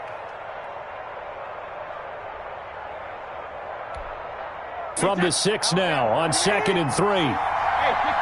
From the 6 now on 2nd and 3.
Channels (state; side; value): identical; both; correlation 1.00